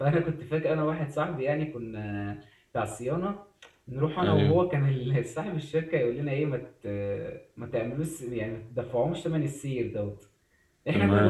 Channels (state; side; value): identical; both; correlation 1.00